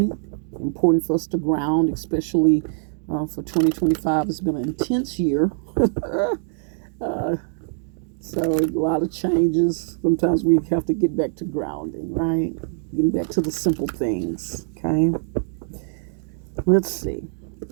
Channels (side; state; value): left; silent; digital silence